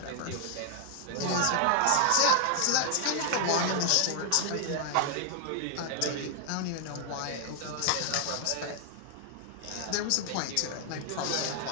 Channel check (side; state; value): both; different; correlation 0.00